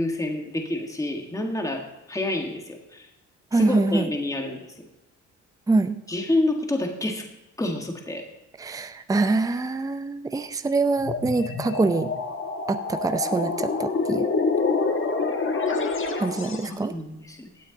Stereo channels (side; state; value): both; normal; correlation 0.63